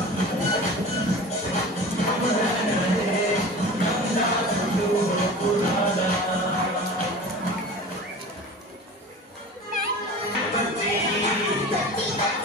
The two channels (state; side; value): normal; both; correlation 0.37